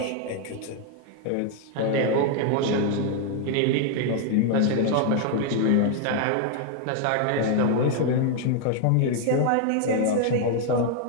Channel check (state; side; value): different; both; correlation 0.00